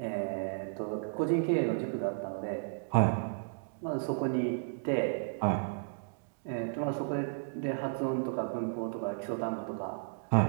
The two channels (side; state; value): left; silent; digital silence